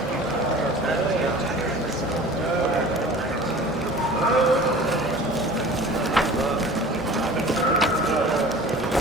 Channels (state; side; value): normal; both; correlation 0.42